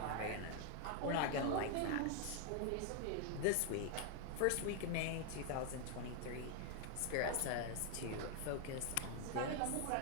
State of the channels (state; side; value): different; both; correlation 0.00